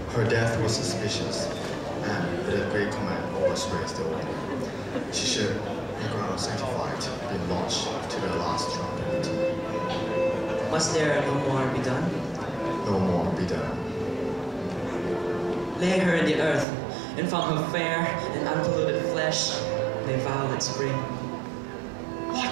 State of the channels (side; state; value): left; drops out; at 16.7 s